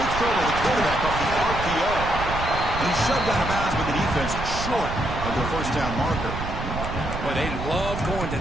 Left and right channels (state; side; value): noise; right; rumble, 6 dB below the sound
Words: Quick throw by the quarterback off the RPO. And he's shoved out of bounds by the defense short of the 1st down marker. Boy, they love going to